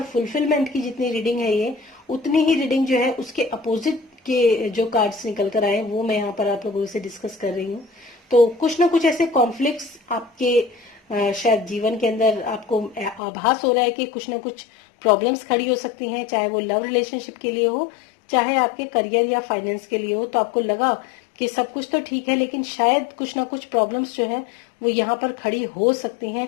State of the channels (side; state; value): right; drops out; at 13.2 s